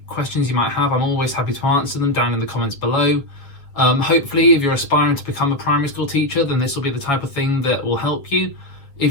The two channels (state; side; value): late; right; 7.2 ms